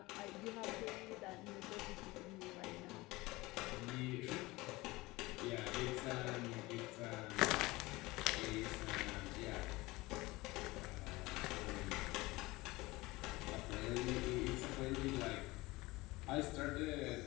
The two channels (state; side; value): quieter; right; 21.0 dB